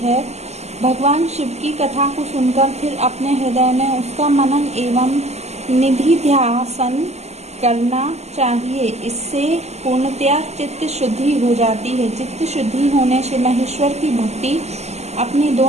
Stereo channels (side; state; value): left; late; 0.32 ms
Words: है। भगवान शिव की कथा को सुनकर फिर अपने हृदय में उसका मनन एवं निधिध्यासन करना चाहिए। इससे पूर्णतया चित्त शुद्धि हो जाती है। चित्त शुद्धि होने से महेश्वर की भक्ति अपने